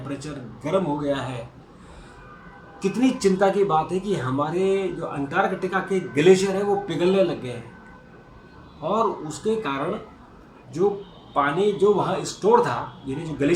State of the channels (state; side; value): identical; both; correlation 1.00